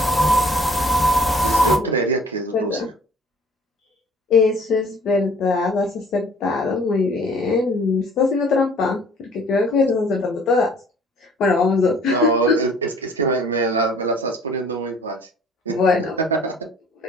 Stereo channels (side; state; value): both; normal; correlation 0.55